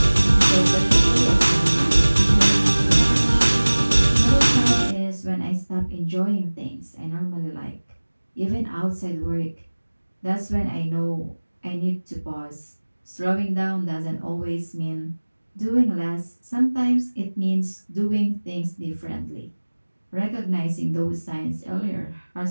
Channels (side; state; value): both; inverted; correlation -1.00